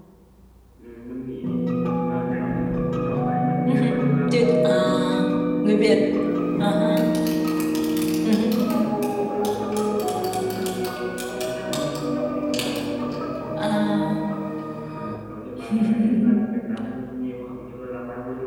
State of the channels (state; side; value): identical; both; correlation 1.00